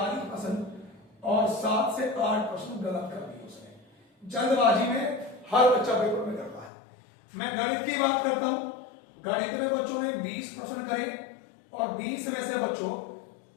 और 7 से 8% गलत कर दी उसने। जल्दबाजी में हर बच्चा पेपर में करता है। मैं गणित की बात करता हूं, गणित में बच्चों ने 20% करे और 20 में से बच्चों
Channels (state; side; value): drops out; right; at 6.7 s